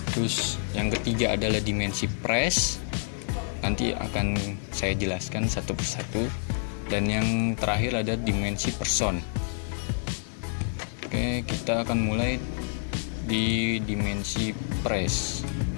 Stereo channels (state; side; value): silent; right; 59 dB below the other